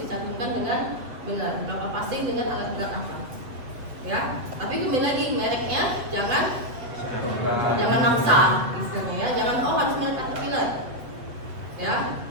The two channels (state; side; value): late; left; 7.9 ms